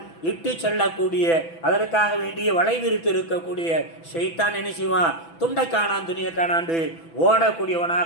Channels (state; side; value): late; right; 6.0 ms